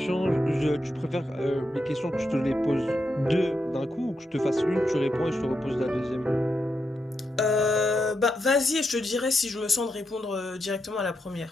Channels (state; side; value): normal; both; correlation 0.84